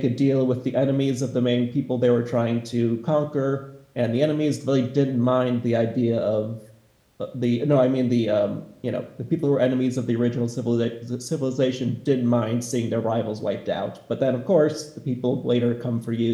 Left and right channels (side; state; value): both; identical; correlation 1.00